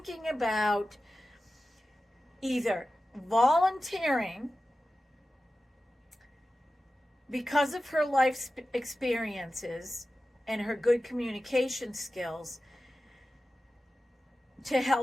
about either volunteering because of her life experiences and her good communication skills to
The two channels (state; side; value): normal; both; correlation 0.94